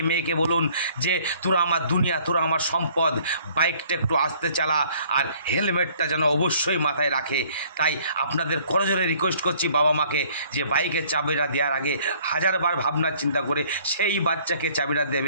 মেয়েকে বলুন যে তোরা আমার দুনিয়া, তোরা আমার সম্পদ, বাইকটা একটু আস্তে চালা আর হেলমেটটা যেন অবশ্যই মাথায় রাখে। তাই আপনাদের করজোরে রিকোয়েস্ট করছি বাবা মাকে যে বাইকের চাবিটা দেওয়ার আগে হাজারবার ভাবনা চিন্তা করে সেই বাচ্চাকে চাবিটা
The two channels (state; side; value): inverted; both; correlation -0.58